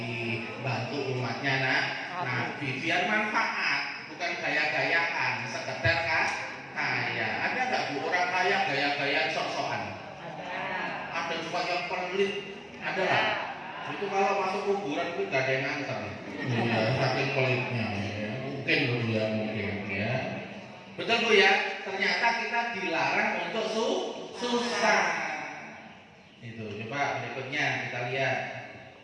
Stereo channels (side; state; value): both; identical; correlation 1.00